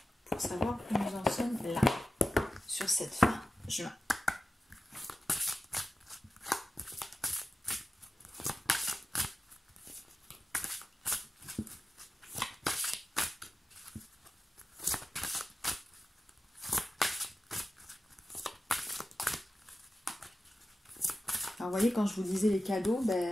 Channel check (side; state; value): both; normal; correlation 0.93